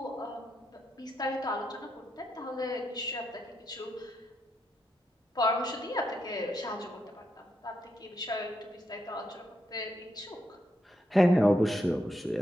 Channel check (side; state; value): both; normal; correlation 0.81